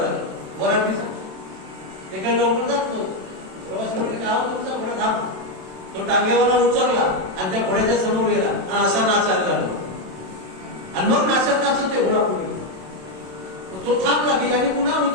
वरातीचा. ते काही लवकर जात नव्हतं. प्रवासी म्हणजे काय तुमचा घोडा थांब. तो टांगेवाला उचलला आणि त्या घोड्याच्या समोर गेला आणि असा नाचायला लागला. आणि मग नाचत नाचत ते घोडा पुढे गेला. तो थांबला की आणि पुन्हा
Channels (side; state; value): left; late; 27 ms